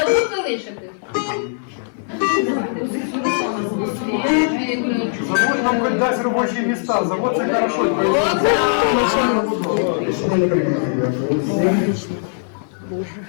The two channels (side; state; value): right; silent; digital silence